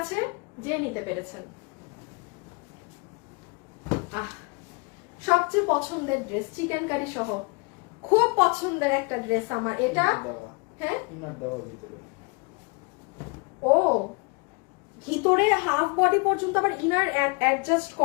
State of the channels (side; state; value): right; quieter; 30.9 dB